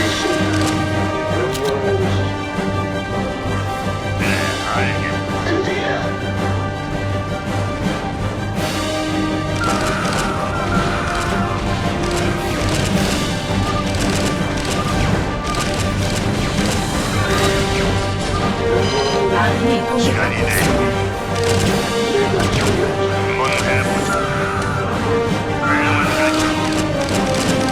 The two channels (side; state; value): both; identical; correlation 1.00